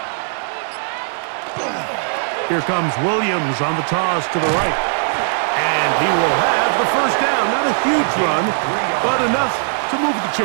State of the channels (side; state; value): left; silent; 63 dB below the other